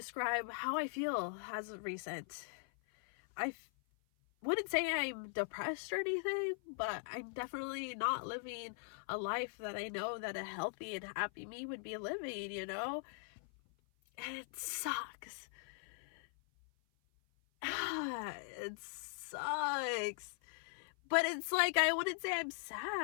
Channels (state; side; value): silent; right; 51 dB below the other